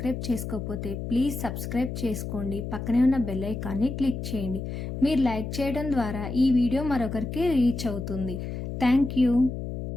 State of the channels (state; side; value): noise; left; hum, 6 dB below the sound